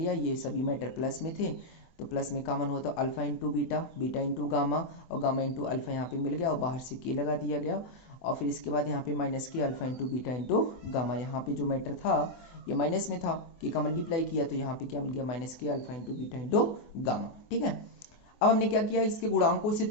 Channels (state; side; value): late; right; 24 ms